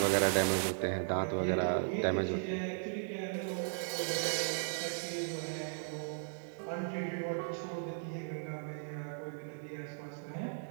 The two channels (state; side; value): silent; left; digital silence